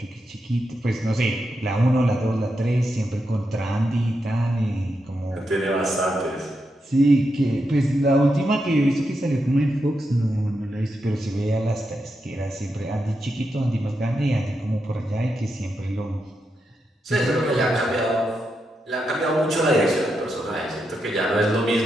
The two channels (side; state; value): both; normal; correlation 0.85